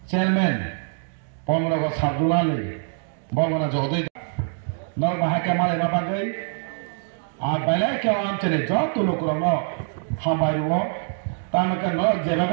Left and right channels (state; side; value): silent; left; 63 dB below the other